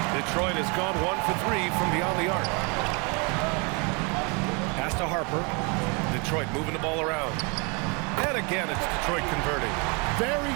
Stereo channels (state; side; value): quieter; left; 31.9 dB